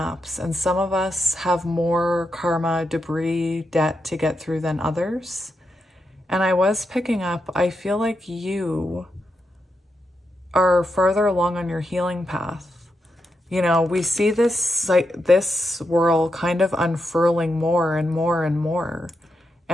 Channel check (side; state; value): both; normal; correlation 0.84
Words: and some of us have more karma, debris, debt to get through than others. And I was picking up, I feel like you are further along on your healing path. You know, we see this, like, this whirl kind of unfurling more and more and more.